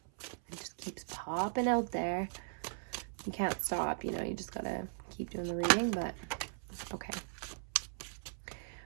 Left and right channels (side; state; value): left; silent; 52 dB below the other